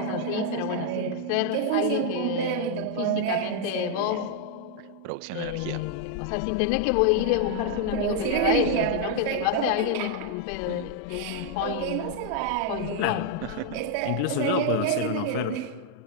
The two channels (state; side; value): different; both; correlation 0.00